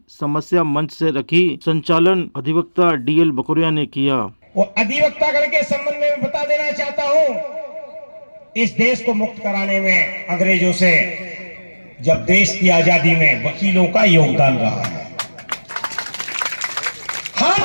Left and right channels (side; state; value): both; inverted; correlation -1.00